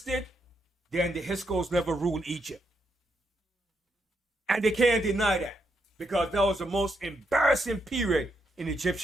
then the Hyksos never ruled Egypt. And they can't deny that. Because that was the most embarrassing period in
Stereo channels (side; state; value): both; normal; correlation 0.80